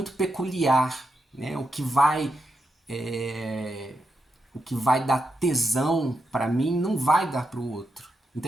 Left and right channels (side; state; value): both; normal; correlation 0.85